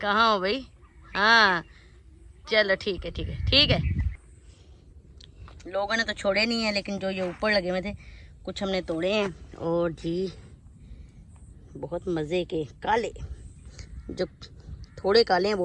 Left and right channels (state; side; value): identical; both; correlation 1.00